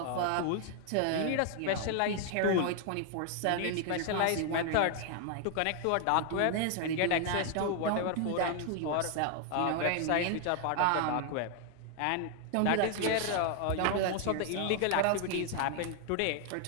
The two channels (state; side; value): different; both; correlation 0.00